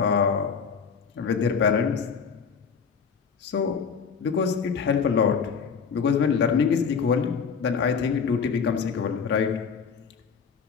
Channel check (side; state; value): right; quieter; 6.1 dB